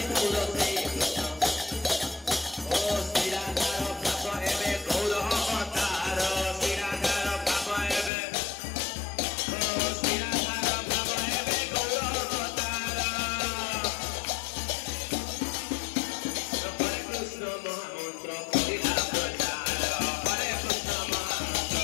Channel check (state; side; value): drops out; right; at 8.1 s